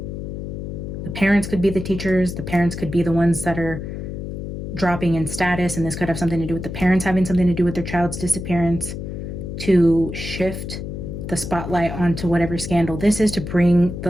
The parents could be the teachers. The parents could be the ones that are dropping in status, and this could have something to do with the parents having something to do with their child's disappearance, to shift the spotlight onto whatever scandal this is, to bring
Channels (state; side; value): noise; left; hum, 7 dB below the sound